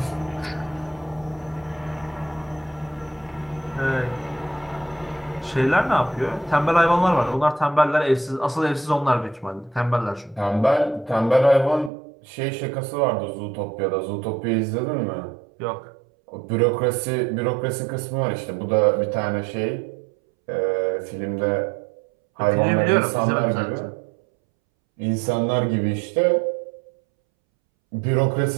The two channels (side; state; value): left; drops out; at 11.9 s